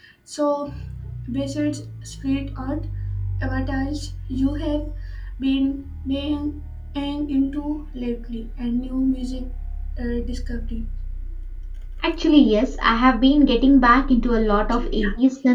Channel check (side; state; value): both; identical; correlation 1.00